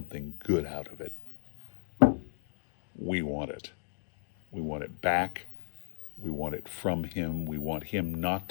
good out of it, we want it. We want it back. We want it from him. We want him not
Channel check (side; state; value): right; silent; digital silence